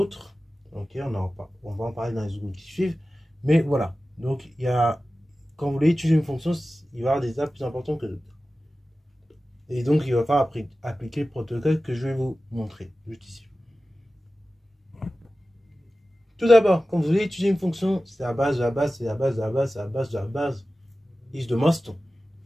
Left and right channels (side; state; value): both; normal; correlation 0.95